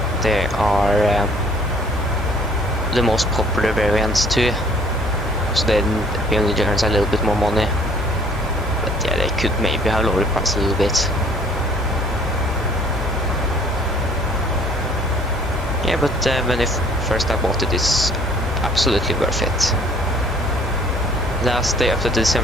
they are the most popular variants too. So then PMDG earns a little bit more money. But yeah, they could maybe have lowered the price a little bit. Yeah, but when first I bought it, it's absolutely worth it. Last day after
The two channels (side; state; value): both; normal; correlation 0.56